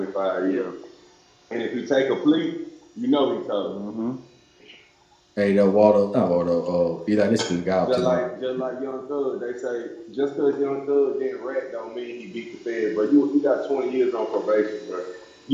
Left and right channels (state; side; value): identical; both; correlation 1.00